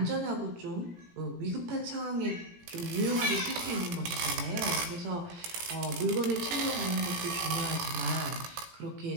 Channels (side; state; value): left; late; 17 ms